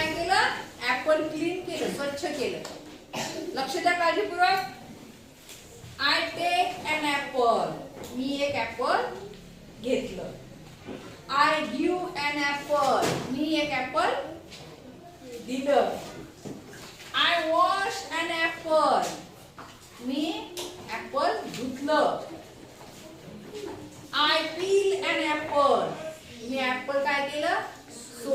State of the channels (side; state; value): both; identical; correlation 1.00